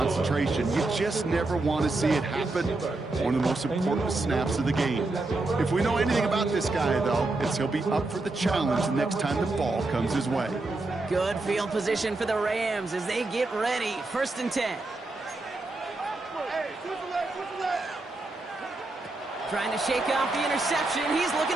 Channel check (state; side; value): quieter; left; 3.1 dB